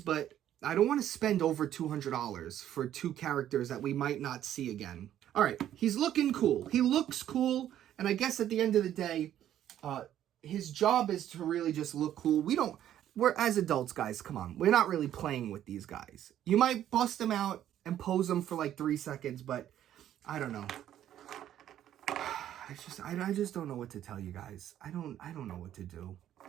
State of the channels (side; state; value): left; quieter; 11.4 dB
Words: but I don't want to spend over $200 for two characters that we might not see again. All right, he's looking cool. He looks cool, and I guess at the end of the day, his job is to really just look cool. We're as adults, guys, come on. We're not really playing with these guys. You might bust them out and pose them for like 3 seconds, but I don't know. I just don't know what to tell you guys. I don't know what to do.